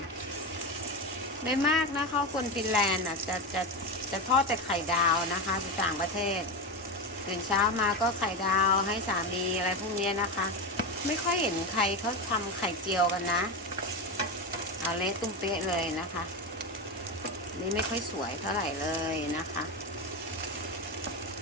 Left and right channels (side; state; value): both; normal; correlation 0.17